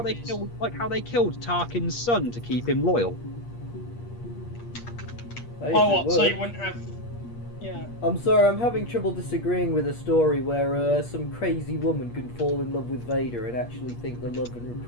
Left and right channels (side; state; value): right; late; 8.5 ms